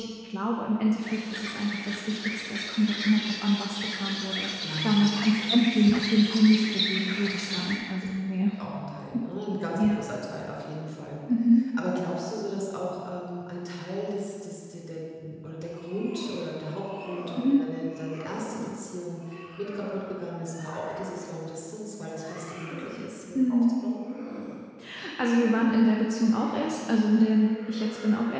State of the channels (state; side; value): identical; both; correlation 1.00